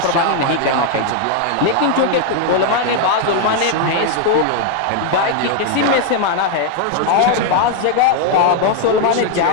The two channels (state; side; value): different; both; correlation 0.00